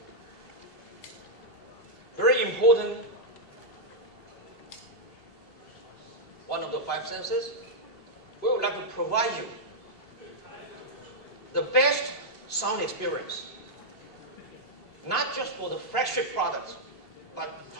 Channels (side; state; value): right; late; 2.8 ms